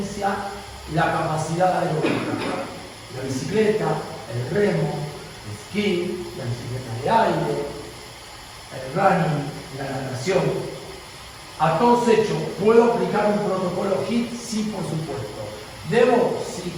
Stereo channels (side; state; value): both; identical; correlation 1.00